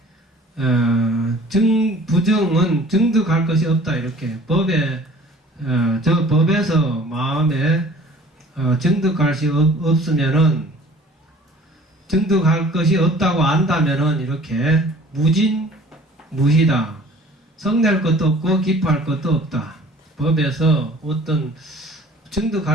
부증은 증득할 것이 없다. 이렇게 법에 저 법에서 마음에 증득할 것이 없으면은 증득할 것이 없다고 안다면은 이렇게 무희다. 성낼 것도 없고 기뻐할 것도 없다. 법에서 어떤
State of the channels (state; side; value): normal; both; correlation 0.49